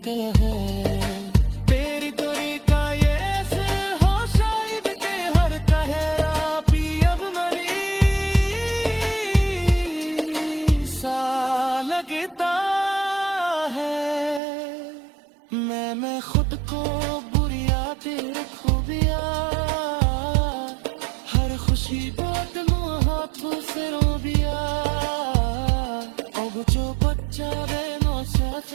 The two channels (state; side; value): drops out; left; at 14.4 s